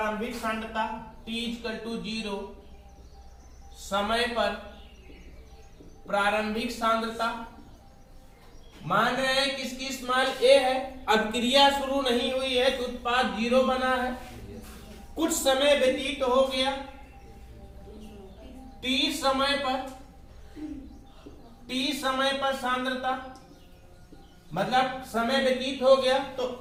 सांद्रता, T इक्वल टू 0 समय पर प्रारंभिक सांद्रता। मान रहे हैं कि इसकी स्मॉल a है, अभिक्रिया शुरू नहीं हुई है तो उत्पाद 0 बना है। कुछ समय व्यतीत हो गया, t समय पर सांद्रता, मतलब समय व्यतीत हो गया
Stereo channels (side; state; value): both; identical; correlation 1.00